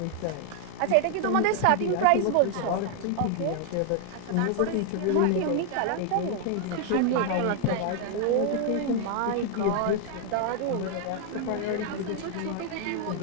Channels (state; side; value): different; both; correlation 0.00